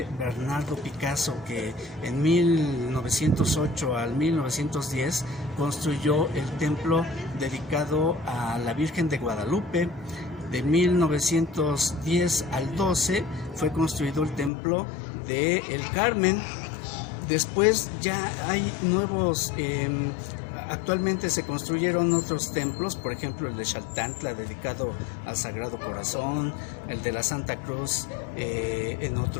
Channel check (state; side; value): drops out; right; at 14.5 s